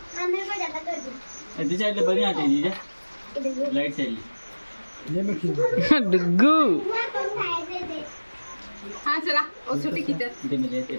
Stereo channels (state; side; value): inverted; both; correlation -1.00